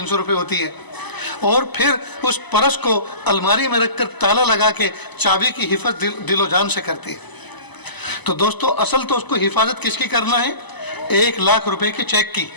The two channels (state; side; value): late; right; 1.0 ms